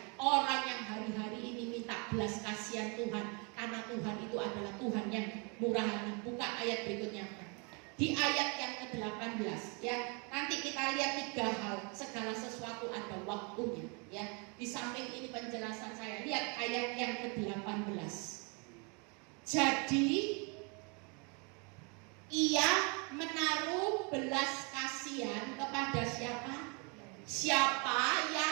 orang yang hari-hari ini minta belas kasihan Tuhan, karena Tuhan itu adalah Tuhan yang murah hati. Buka ayat berikutnya. Di ayat yang ke-18 ya, nanti kita lihat 3 hal, segala sesuatu ada waktunya ya. Di samping ini penjelasan saya, lihat ayat yang ke-18. Jadi ia menaruh belas kasihan kepada siapa? Siapa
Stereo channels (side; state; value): left; quieter; 33.6 dB